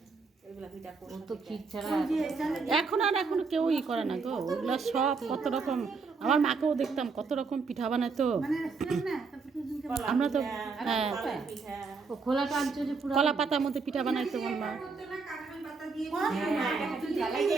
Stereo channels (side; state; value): left; quieter; 4.6 dB